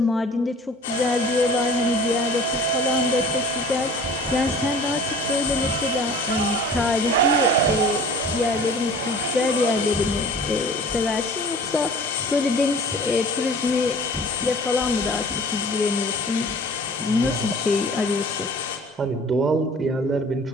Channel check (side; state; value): both; normal; correlation 0.45